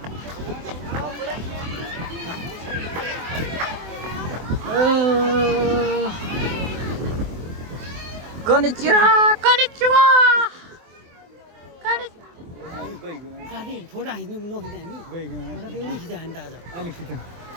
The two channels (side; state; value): left; late; 24 ms